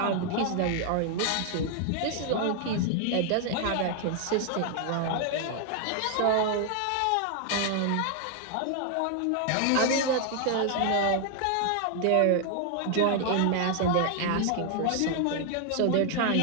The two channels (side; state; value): both; different; correlation 0.00